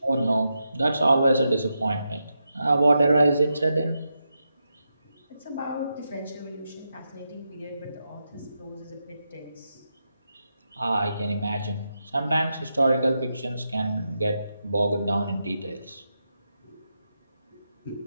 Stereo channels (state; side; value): inverted; both; correlation -0.86